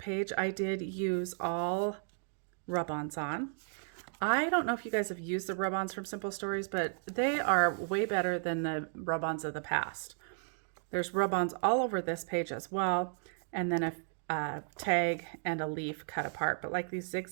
I did use all rub-ons on. I don't know if you guys have used the rub-ons from Simple Stories, but they are way better than the rub-ons of the past. There's rub-ons all over this page as well, and then a tag and a leaf cut apart. But like these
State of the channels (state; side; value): silent; left; digital silence